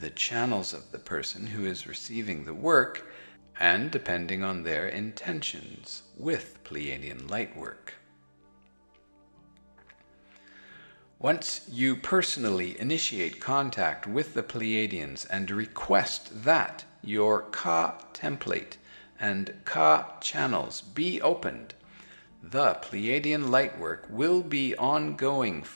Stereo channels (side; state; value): both; inverted; correlation -1.00